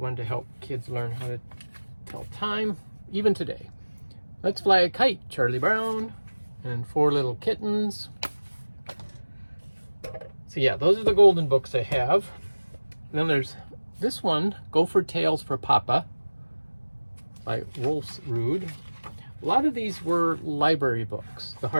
to help kids learn how to tell time, even today. Let's Fly a Kite, Charlie Brown, and Four Little Kittens. So yeah, those are the golden books I have. And then there's this one, Gopher Tales for Papa, by Wolfsrud. A lot of these were library books, the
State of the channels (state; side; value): inverted; both; correlation -1.00